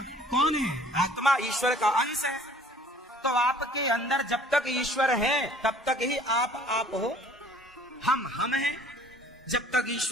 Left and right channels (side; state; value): both; normal; correlation 0.54